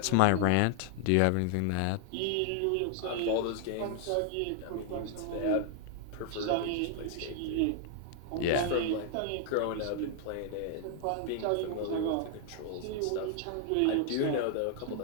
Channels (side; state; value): both; different; correlation 0.00